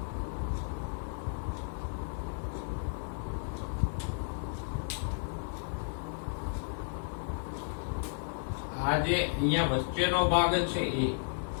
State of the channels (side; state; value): right; silent; digital silence